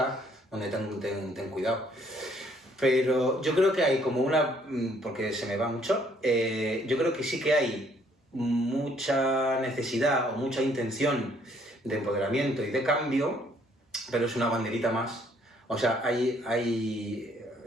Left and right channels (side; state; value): both; normal; correlation 0.65